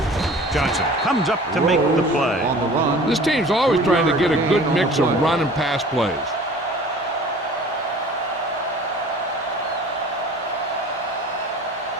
Johnson comes up to make the play. This team's always trying to get a good mix of run and pass plays.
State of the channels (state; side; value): normal; both; correlation 0.45